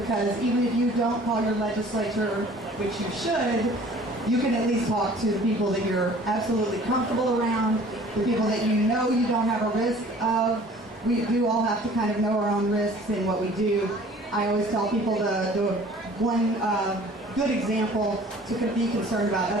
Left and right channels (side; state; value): both; normal; correlation 0.50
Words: even if you don't call your legislature, which you should, you can at least talk to the people that you're absolutely comfortable around, the people that you know you don't have a risk of. We do all have to kind of know our own risks in what we do. I always tell people the one good example to be concerned about,